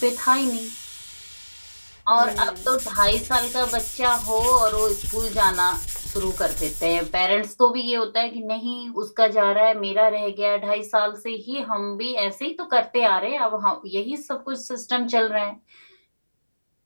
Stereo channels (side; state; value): both; inverted; correlation -1.00